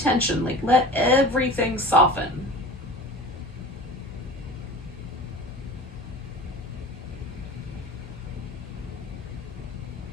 Like let everything soften.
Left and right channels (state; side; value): normal; both; correlation 0.37